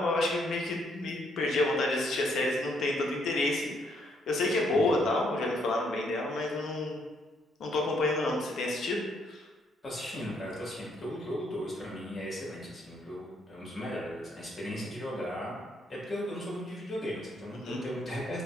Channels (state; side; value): normal; both; correlation 0.71